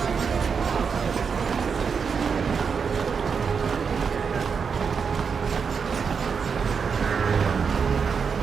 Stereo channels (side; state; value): left; quieter; 6.0 dB